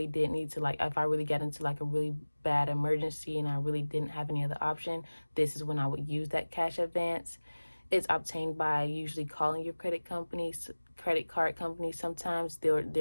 did need to, if I really got into like a really bad emergency and I really didn't have any other option, this is when I would use that cash advance. It's obtained by usually calling your credit companies credit card companies, sometimes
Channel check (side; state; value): both; inverted; correlation -1.00